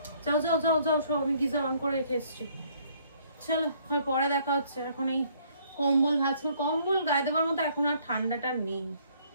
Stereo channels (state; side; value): inverted; both; correlation -0.63